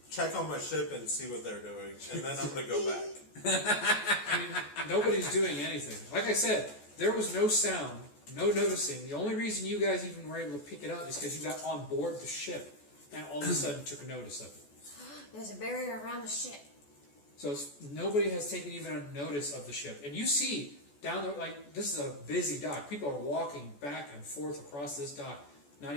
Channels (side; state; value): right; late; 14 ms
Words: check on my ship, and see what they're doing, and then I'm gonna go back. I mean, nobody's doing anything. Like I said, there was no sound, no noticing. The only reason you guys even were able to pick it up is because you got on board the ship and all of a sudden took notice of it. There's a barrier around the ship. So nobody has taken even a notice of the ship. And you see down there, like, this is a busy dock. People are walking back and forth across this dock, not